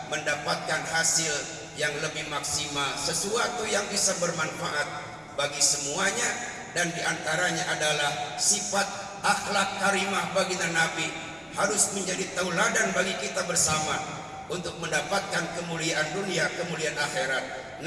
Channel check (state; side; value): identical; both; correlation 1.00